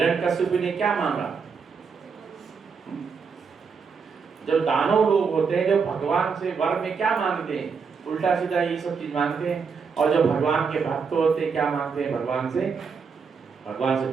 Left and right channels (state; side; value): quieter; left; 5.6 dB